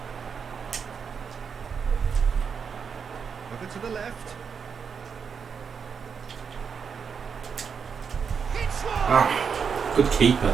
Over to the left. Hits one! Good keeper.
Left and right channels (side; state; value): left; quieter; 6.3 dB